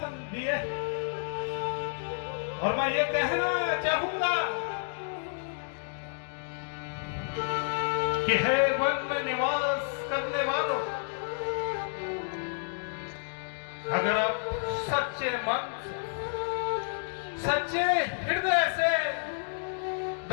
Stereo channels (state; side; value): silent; right; digital silence